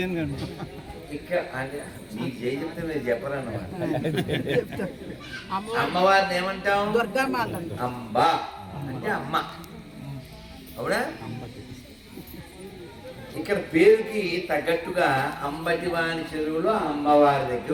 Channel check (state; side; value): identical; both; correlation 1.00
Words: అని ఇక్కడ అంటే మీకు జై చెప్తే మీరు చెప్పరన్నమాట. అమ్మవారిని ఏమంటాం? అంబ అంటే అమ్మ, అవునా? ఇక్కడ పేరుకి తగ్గట్టుగా అంబటివాణి చెరువులో అమ్మవారి